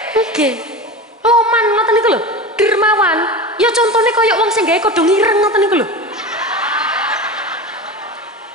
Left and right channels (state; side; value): normal; both; correlation 0.28